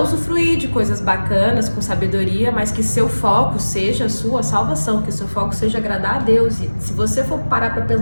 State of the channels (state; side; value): inverted; both; correlation -1.00